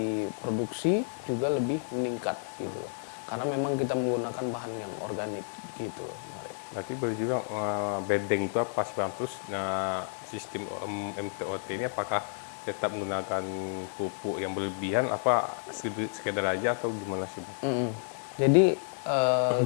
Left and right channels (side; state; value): right; silent; 57 dB below the other